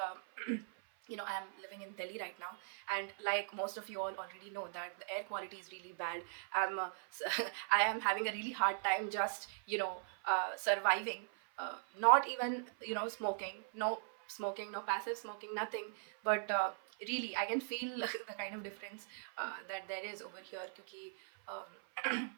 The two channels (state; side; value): silent; left; 51 dB below the other